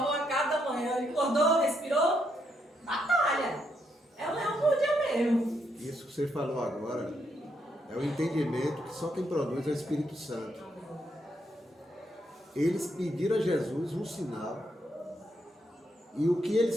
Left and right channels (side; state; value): both; normal; correlation 0.77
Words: a cada manhã. Ele acordou, respirou, batalha. É o leão por dia mesmo. Isso que você falou agora é o entendimento que só quem produz é o Espírito Santo. Eles pediram a Jesus um sinal e o que